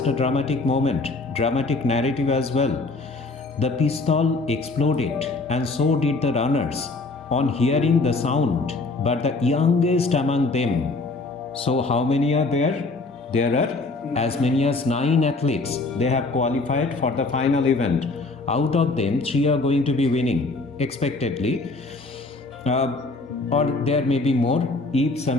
a dramatic moment, dramatic narrative as well. The pistol exploded and so did the runners on hearing the sound, but the youngest among them. So how many are there? There are as many as 9 athletes. They have qualified for the final event. Out of them, 3 are going to be winning expectedly, or there may be more if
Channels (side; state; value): right; quieter; 3.5 dB